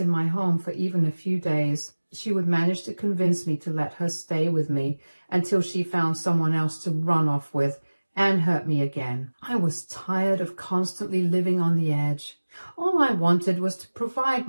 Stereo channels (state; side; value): inverted; both; correlation -1.00